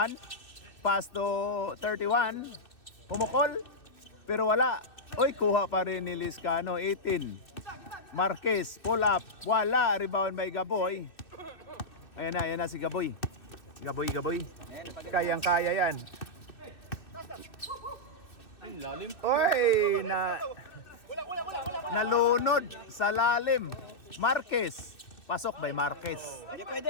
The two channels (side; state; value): right; late; 2.6 ms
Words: Pass to 31. Kumukol. Pero wala. Oy, kuha pa rin ni Liscano. 18. Marquez. Pull up. Wala. Rebound by Gaboy. Ayan na si Gaboy. Gaboy. Kayang-kaya yan. Oy, nalunod sa lalim. Marquez. Pasok by Marquez. Hindi